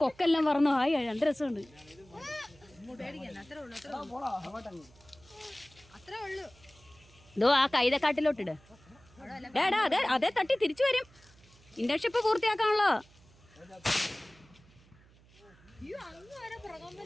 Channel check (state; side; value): noise; right; hum, 27 dB below the sound